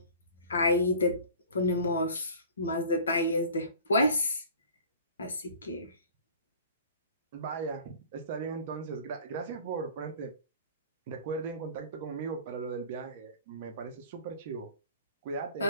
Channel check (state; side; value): inverted; both; correlation -0.45